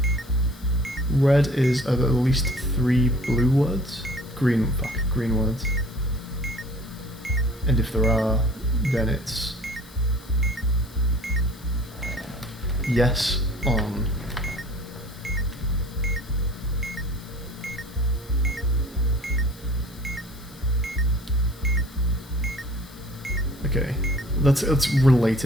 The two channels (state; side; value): noise; left; hiss, 23 dB below the sound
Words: Red is at least 3 blue words. Green words. And if there are, then it's yes on okay. It's